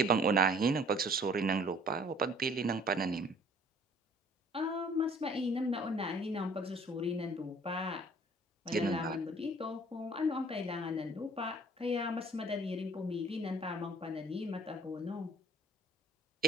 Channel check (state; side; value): normal; both; correlation 0.54